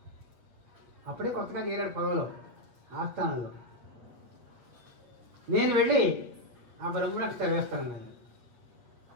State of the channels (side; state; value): left; late; 8.2 ms